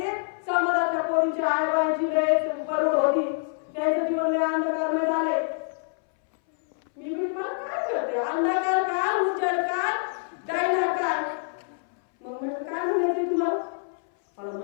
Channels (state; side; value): silent; right; 61 dB below the other